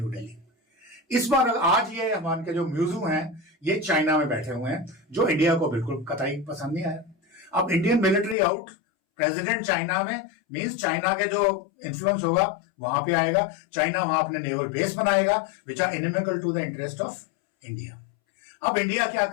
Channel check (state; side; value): drops out; right; at 8.3 s